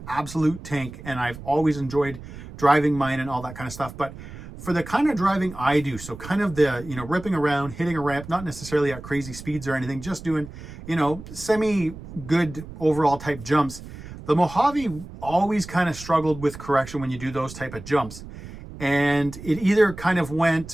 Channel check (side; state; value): right; noise; rumble, 14 dB below the sound